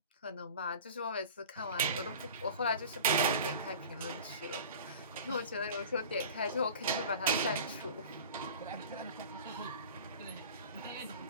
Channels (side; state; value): both; inverted; correlation -0.38